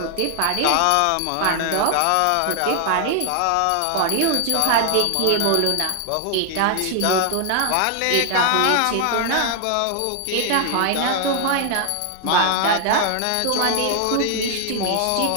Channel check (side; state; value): both; different; correlation 0.00